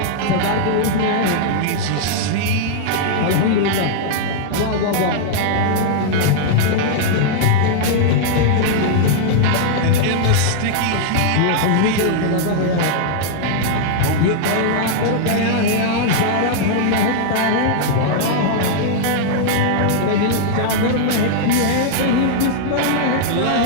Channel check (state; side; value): different; both; correlation -0.01